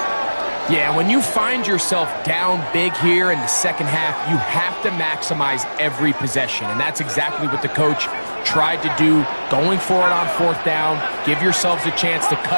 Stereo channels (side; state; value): both; inverted; correlation -1.00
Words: Yeah, when you find yourself down big here in the second half, you have to maximize every possession, and that's exactly what the coach tried to do, going for it on fourth down. Give yourselves a chance to